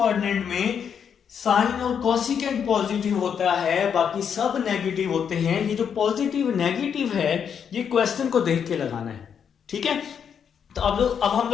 में साइन और कोसिकेंट पॉजिटिव होता है, बाकी सब नेगेटिव होते हैं। ये जो पॉजिटिव नेगेटिव है ये क्वेश्चन को देख के लगाना है, ठीक है। तो अब हम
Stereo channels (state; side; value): quieter; right; 7.6 dB